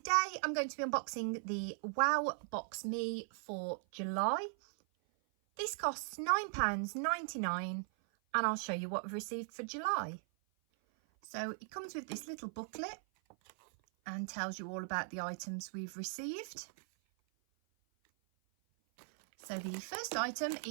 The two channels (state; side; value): silent; left; 52 dB below the other